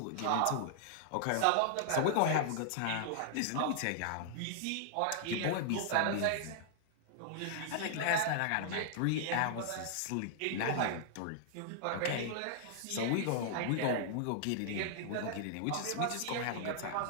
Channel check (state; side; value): different; both; correlation -0.01